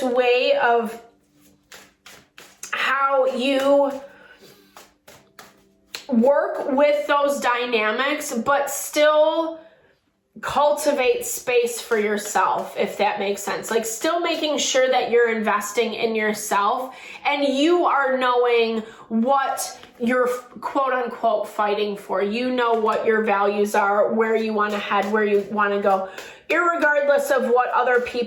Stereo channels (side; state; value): both; identical; correlation 1.00